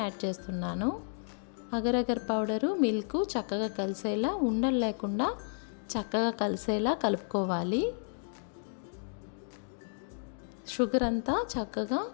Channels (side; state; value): right; silent; digital silence